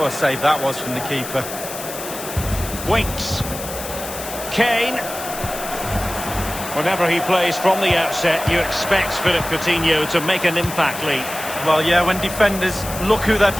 a save that was from the keeper. Winks. Kane. Whenever he plays from the outset, you expect Philippe Coutinho to make an impact, Lee. Well, yeah, when defenders look who they're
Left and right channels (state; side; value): noise; left; hiss, 10 dB below the sound